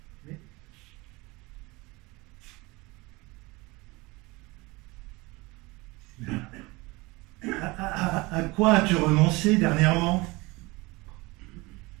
Mais à quoi as-tu renoncé dernièrement?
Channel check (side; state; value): left; quieter; 23.7 dB